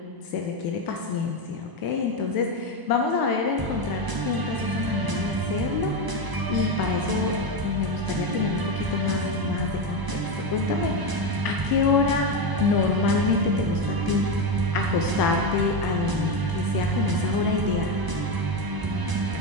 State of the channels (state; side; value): late; left; 1.0 ms